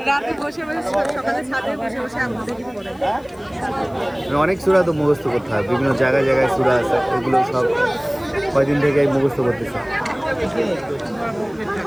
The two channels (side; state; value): left; noise; hiss, 30 dB below the sound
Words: রাতে বসে সকালে ছাদে বসে আম্মু দেখি পড়ে। অনেক সূরা তো মুখস্থ করতে হয়, বিভিন্ন জায়গায় জায়গায় সূরা আছে, এগুলো সব কয়দিন থেকে মুখস্থ করতেছে।